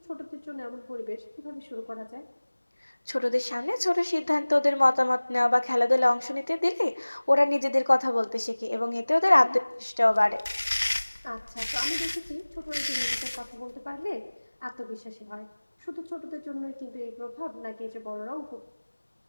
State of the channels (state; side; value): inverted; both; correlation -1.00